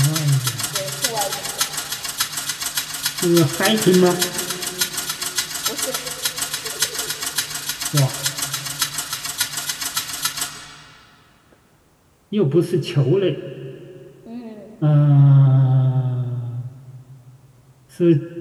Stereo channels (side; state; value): both; identical; correlation 1.00